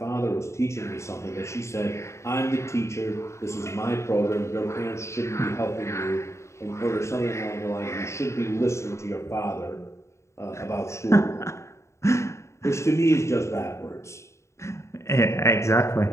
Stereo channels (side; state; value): right; late; 0.14 ms